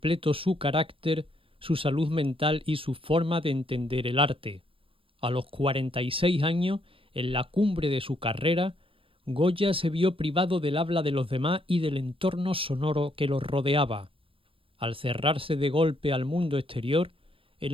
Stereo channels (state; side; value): late; left; 0.26 ms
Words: su carácter, su salud mental y su forma de entender el arte. A los 46 años, en la cumbre de su carrera, Goya se vio privado del habla de los demás y del entorno sonoro que los rodeaba. Al cerrarse de golpe al mundo exterior, el